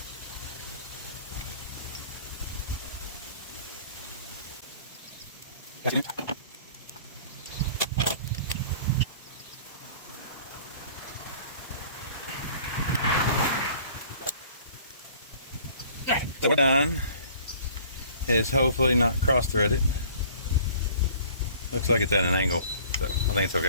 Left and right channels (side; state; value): both; inverted; correlation -0.50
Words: so we're done. Is hopefully not cross-threaded. Looks like it's at an angle, so I think it's